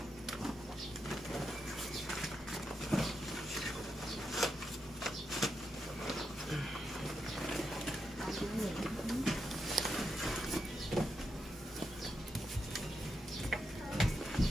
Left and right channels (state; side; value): normal; both; correlation 0.84